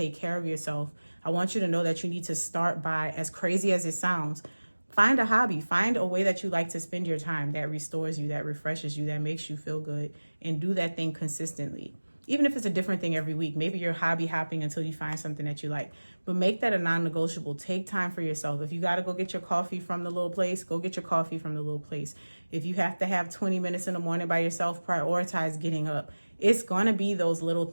care of yourself, I want you to know that you need to start by, as crazy as it sounds, find a hobby, find a way that you like to spend your time that restores you, that refreshes you, that makes you feel good, and do that thing consistently. Even if it's a different thing every week, maybe you're hobby hopping until you find something that you like, but make that a non-negotiable. Take time for yourself. If you got to go get your coffee from the little place, go get your coffee from the little place. If you have to have 20 minutes in the morning by yourself, prioritize getting up. It's going to be those little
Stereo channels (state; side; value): inverted; both; correlation -1.00